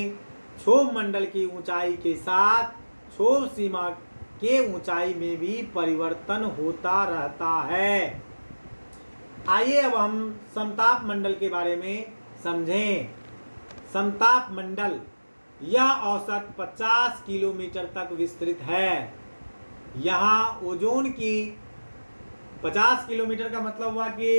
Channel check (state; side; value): inverted; both; correlation -1.00